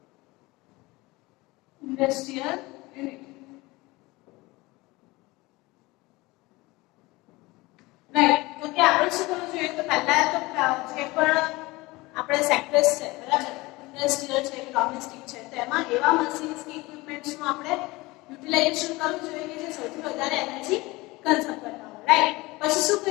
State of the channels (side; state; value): right; quieter; 21.8 dB